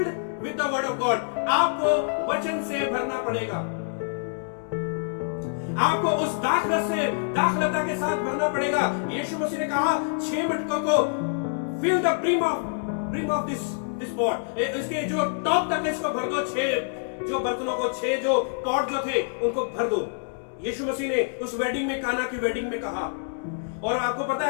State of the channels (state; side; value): silent; right; digital silence